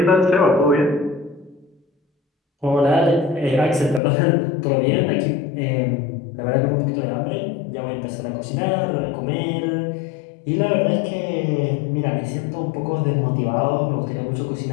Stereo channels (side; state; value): right; drops out; at 4.0 s